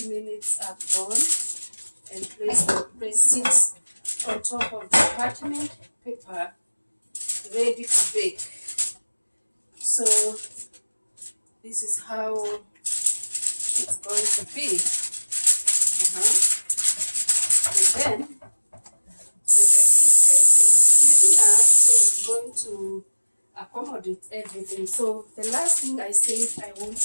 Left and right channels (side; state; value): both; inverted; correlation -1.00